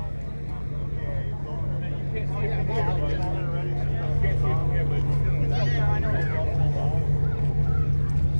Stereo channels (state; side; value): inverted; both; correlation -1.00